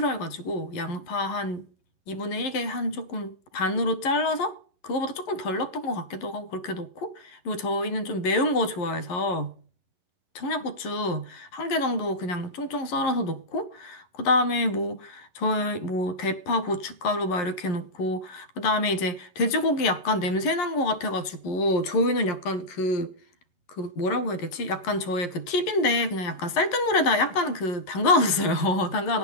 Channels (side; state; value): right; late; 11 ms